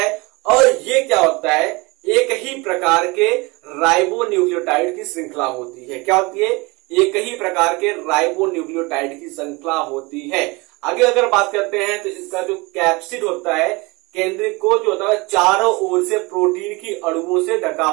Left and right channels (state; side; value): quieter; left; 25.4 dB